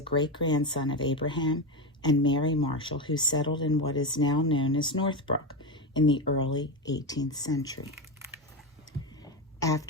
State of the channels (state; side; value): normal; both; correlation 0.14